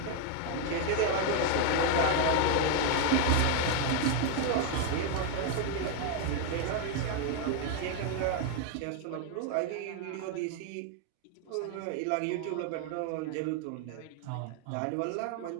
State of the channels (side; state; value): both; different; correlation 0.01